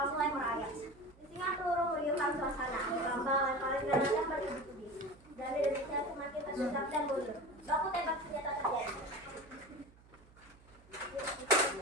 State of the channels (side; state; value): right; noise; hum, 25 dB below the sound